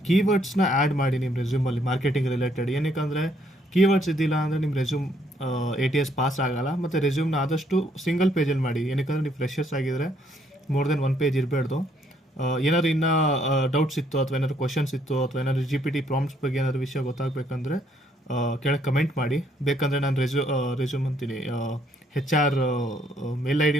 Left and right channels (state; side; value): normal; both; correlation 0.69